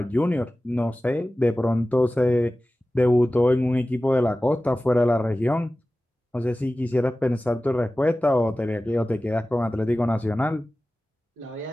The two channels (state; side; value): normal; both; correlation 0.96